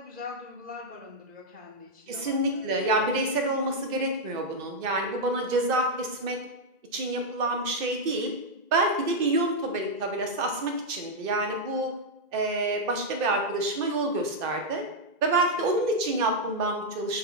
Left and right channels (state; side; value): late; left; 2.0 ms